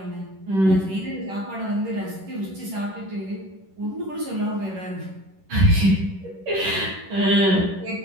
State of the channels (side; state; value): left; late; 11 ms